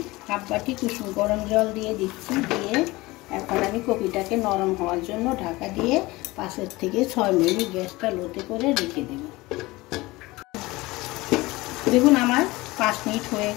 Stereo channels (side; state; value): right; quieter; 20.9 dB